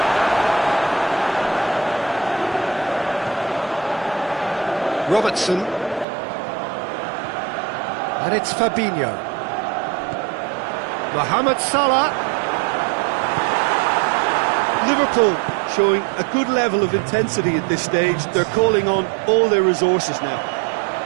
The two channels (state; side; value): drops out; left; at 6.1 s